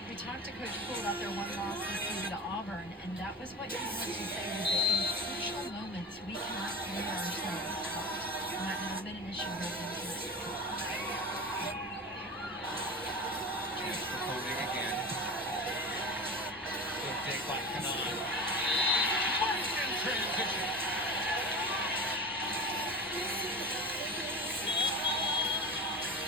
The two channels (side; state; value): both; normal; correlation 0.31